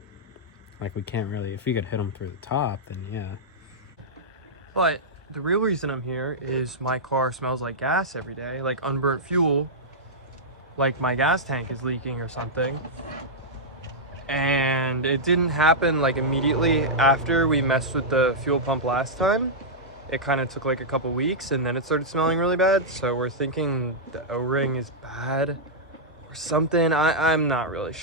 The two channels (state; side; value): normal; both; correlation -0.09